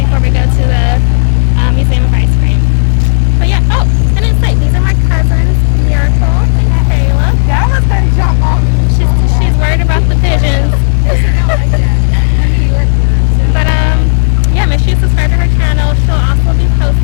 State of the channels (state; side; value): silent; right; 59 dB below the other